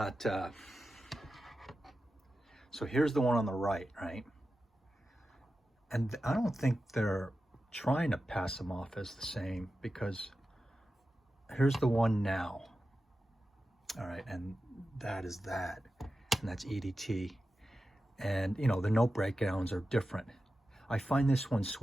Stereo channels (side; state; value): both; normal; correlation 0.92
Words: so here's the one on the right, and I don't think they're trying to pass them off as the same, because here's the one now. All right, and that is that, and that's EDT. And you know, the note breakdowns are different. I find this one